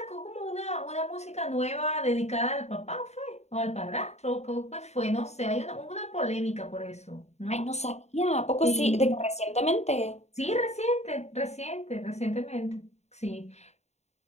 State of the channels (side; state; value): right; late; 0.32 ms